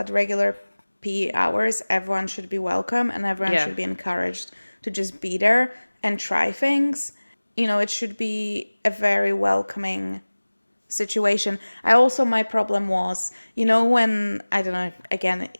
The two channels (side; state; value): both; inverted; correlation -1.00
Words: regular PE hours, everyone should be welcome and everyone Yeah. should be encouraged to just be there and try things. It should be a very welcoming situation. My problem was, when, I don't know, again,